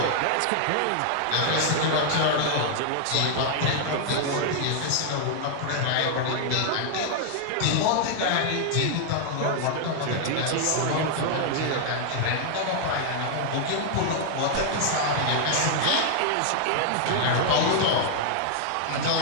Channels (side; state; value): both; different; correlation 0.00